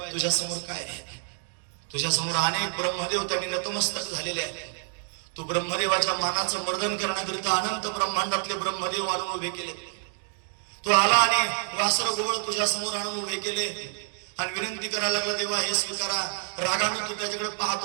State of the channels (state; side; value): silent; left; 59 dB below the other